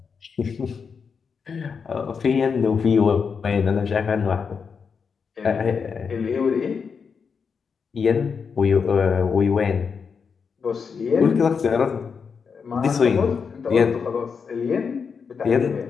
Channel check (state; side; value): quieter; right; 5.9 dB